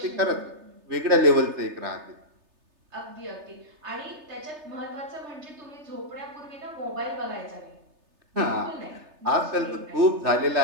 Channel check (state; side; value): late; left; 3.3 ms